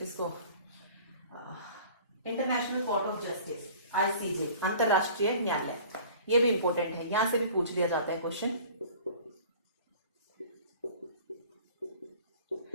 इसको, international court of justice, ICJ, अंतरराष्ट्रीय न्यायालय। ये भी इंपॉर्टेंट है, यहां से भी पूछ लिया जाता है क्वेश्चन।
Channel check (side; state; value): both; inverted; correlation -0.47